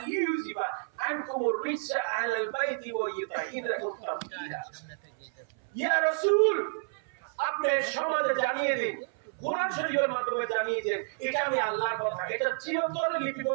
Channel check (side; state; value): left; silent; 58 dB below the other